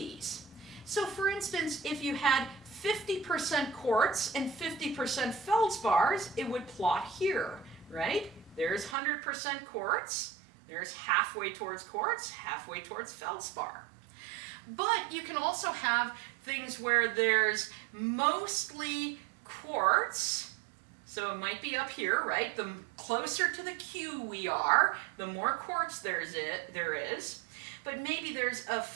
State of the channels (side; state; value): left; drops out; at 9.0 s